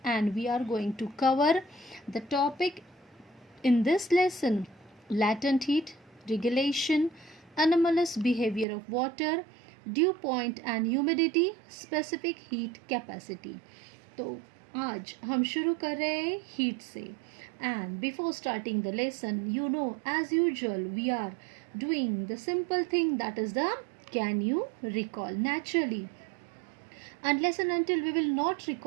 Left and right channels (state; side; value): drops out; left; at 8.7 s